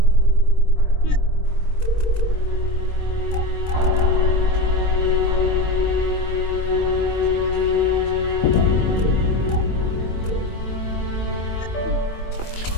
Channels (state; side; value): late; right; 22 ms